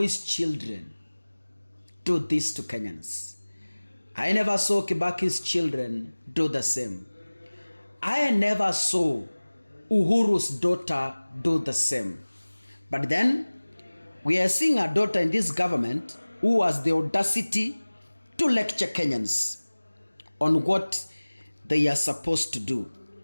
children do this to Kenyans. I never saw Kibaki's children do the same. I never saw Uhuru's daughter do the same. But then, we are seeing a daughter in this government who has the audacity to lecture Kenyans on what they are supposed to do.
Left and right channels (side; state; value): both; inverted; correlation -1.00